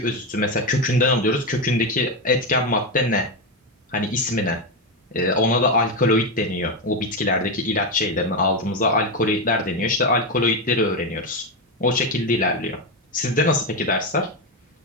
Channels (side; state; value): both; normal; correlation 0.10